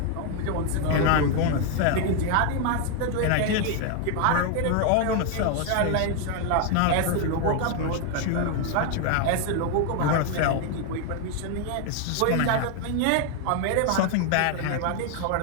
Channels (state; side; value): different; both; correlation 0.00